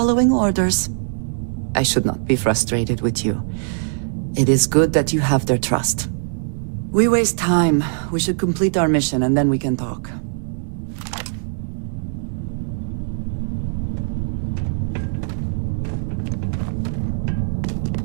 orders. I should not be frustrated with you. It is good that you have their trust. We waste time. We should complete our mission and then we can talk.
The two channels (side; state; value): left; silent; digital silence